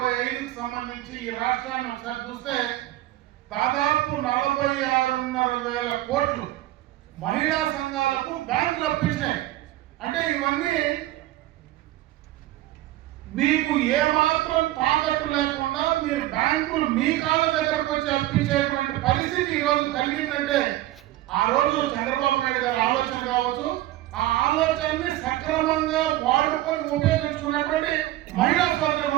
సంబంధించి ఈ రాష్ట్రాన్ని ఒకసారి చూస్తే దాదాపు 46,500 కోట్లు మహిళా సంఘాలకు బ్యాంకులు అప్పించినాయి. అంటే ఇవన్నీ మీకు ఏమాత్రం తాకట్టు లేకుండా మీరు బ్యాంకులు మీ కాళ్ళ దగ్గరకు వచ్చి అప్పించేటువంటి పరిస్థితి ఈరోజు కలిగిందంటే ఆ రోజు చంద్రబాబు నాయుడు గారి ఆలోచన కావచ్చు, ఆ ఆలోచనని సక్రమంగా వాడుకొని ఉపయోగించుకున్నటువంటి మహిళా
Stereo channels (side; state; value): left; quieter; 15.6 dB